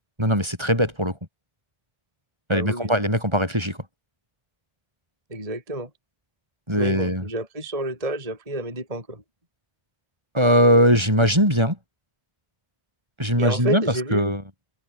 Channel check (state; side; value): late; left; 1.3 ms